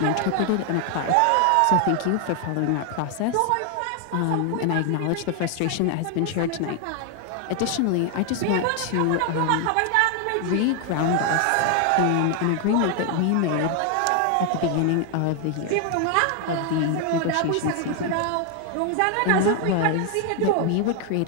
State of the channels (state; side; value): different; both; correlation 0.00